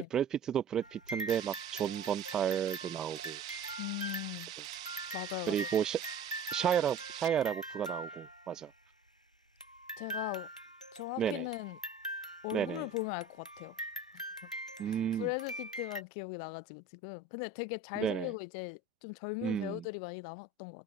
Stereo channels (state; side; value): quieter; left; 3.6 dB